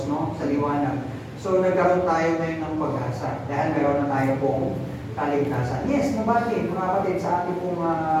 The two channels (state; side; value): identical; both; correlation 1.00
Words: no, sa liwanag. So, nagkaroon tayo ngayon ng pag-asa, dahil meron na tayo pong kaligtasan. Yes, nobody, mga kapatid, sa ating pong